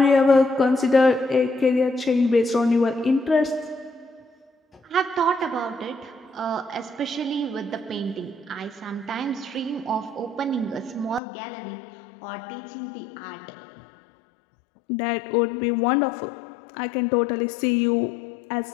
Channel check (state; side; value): drops out; right; at 11.2 s